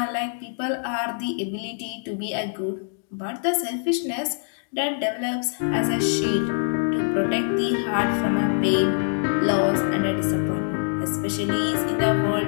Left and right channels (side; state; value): right; silent; digital silence